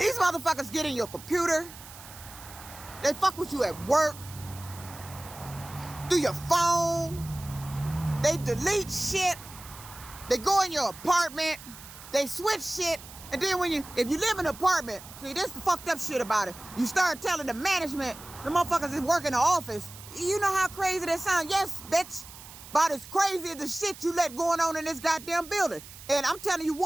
motherfuckers get in your computer. They fuck with you at work, through your phone. They delete shit. They go in your apartment. They switch shit. And then if you live in an apartment, see, this the fucked up shit about it. You start telling the management, the motherfuckers that work in the office, you know how crazy that sounds? Yes, bitch. About as crazy as the shit you let going on in this goddamn building. And I'm telling you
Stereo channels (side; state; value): right; noise; hiss, 17 dB below the sound